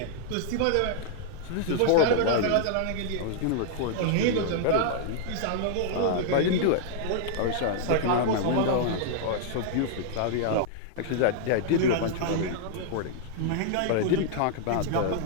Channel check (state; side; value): different; both; correlation -0.01